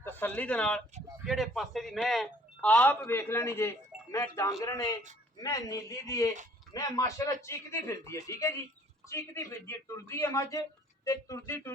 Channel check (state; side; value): normal; both; correlation 0.57